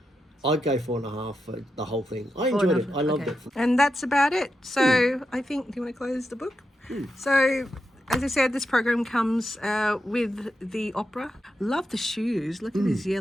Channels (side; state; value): both; normal; correlation 0.87